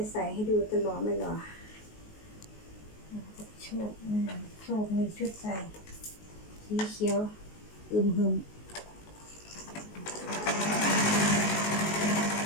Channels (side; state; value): right; late; 19 ms